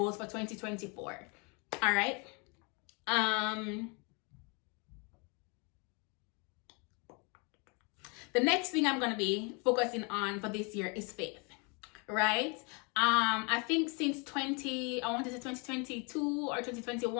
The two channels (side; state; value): right; quieter; 32.5 dB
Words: for 2024. All right. The next thing I'm going to be focusing on for this year is faith. Right? I think since 2022 or